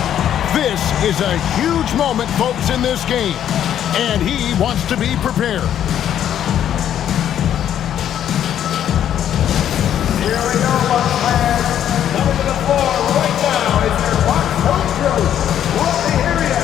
This is a huge moment, folks, in this game. And he wants to be prepared. Here we go, Bucks fans. Coming to the floor right now is your Bucks home crew. Let me hear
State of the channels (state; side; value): quieter; right; 10.3 dB